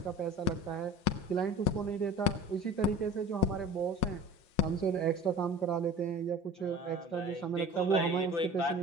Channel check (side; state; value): right; late; 5.8 ms